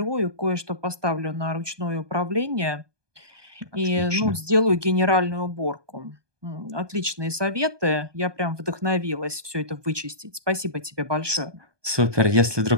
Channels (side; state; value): left; late; 1.2 ms